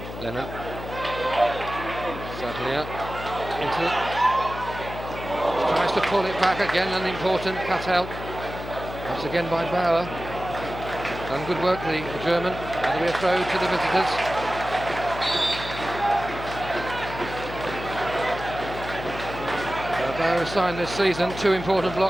Lennon. Sadlier. Into. Tries to pull it back again. An important cut out. Once again by Bauer. Done good work, the German. That'll be a throw to the visitors. Barrow signed this season 2 important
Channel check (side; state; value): left; noise; hum, 10 dB below the sound